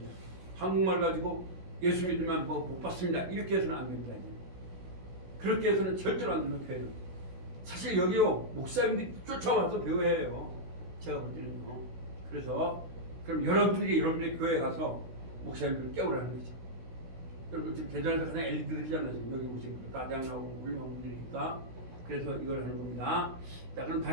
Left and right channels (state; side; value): late; left; 16 ms